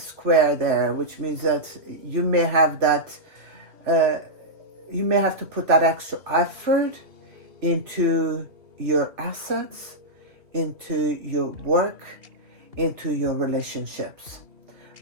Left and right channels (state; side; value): late; left; 2.8 ms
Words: there, which means that you may have that, you may have to put that extra effort into your assets, into your work, into your relationships.